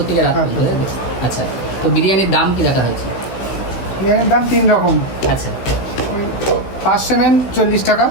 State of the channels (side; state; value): right; late; 16 ms